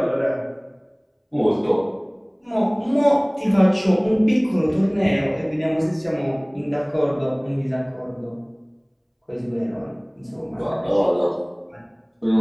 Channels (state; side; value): identical; both; correlation 1.00